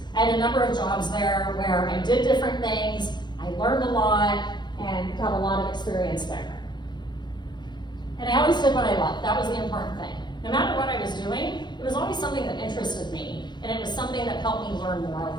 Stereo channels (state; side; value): late; right; 0.21 ms